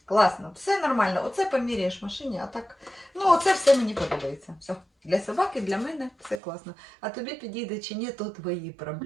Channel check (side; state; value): left; drops out; at 6.4 s